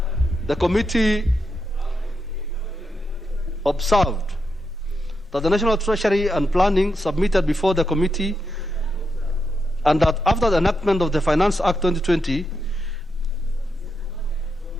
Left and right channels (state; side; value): normal; both; correlation 0.84